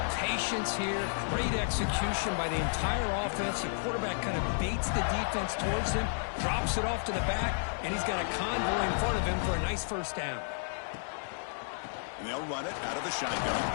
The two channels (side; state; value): right; silent; digital silence